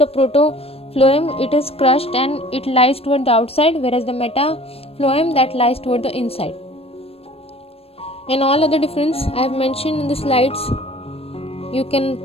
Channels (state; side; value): late; right; 0.28 ms